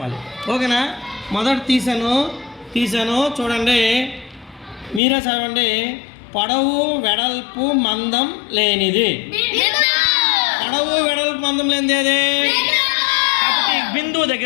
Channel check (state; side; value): drops out; right; at 5.0 s